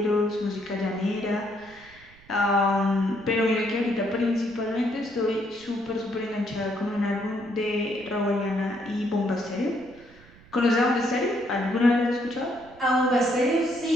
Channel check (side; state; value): right; noise; rumble, 24 dB below the sound